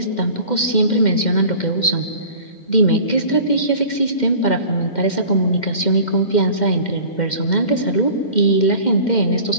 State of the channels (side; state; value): right; late; 2.1 ms